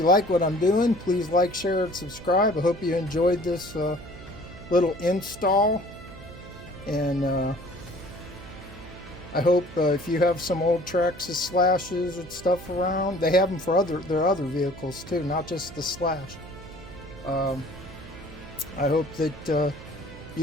like what I'm doing, please like, share, and subscribe. I hope you enjoyed this little install. And I hope if you have some old Traxxas Slashes and stuff around, they have them for their other vehicles too, not just the Slash. I hope that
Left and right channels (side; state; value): right; noise; hum, 16 dB below the sound